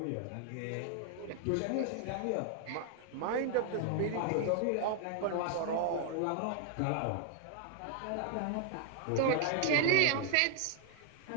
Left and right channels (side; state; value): both; different; correlation 0.00